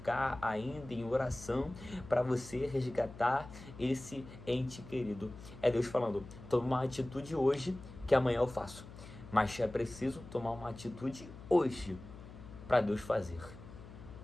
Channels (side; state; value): left; noise; hum, 16 dB below the sound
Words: ainda em oração para você resgatar esse ente querido. É Deus falando, toma uma atitude hoje que amanhã eu faço. Mas é preciso tomar uma atitude hoje para Deus fazer.